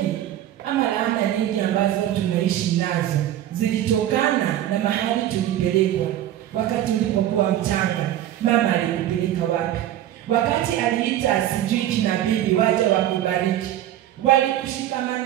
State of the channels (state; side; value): quieter; left; 12.4 dB